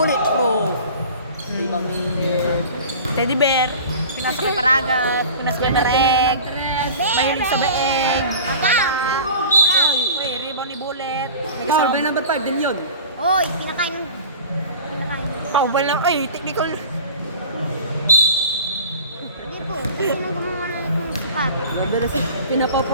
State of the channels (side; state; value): both; inverted; correlation -0.39